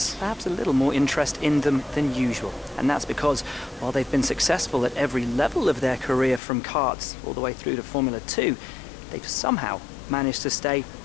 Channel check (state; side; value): drops out; right; at 6.4 s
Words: Perhaps a little more interest in them than usual. And that's because while they've been successful at every level of their career from karts all the way through to Formula 2, they've somehow managed to stay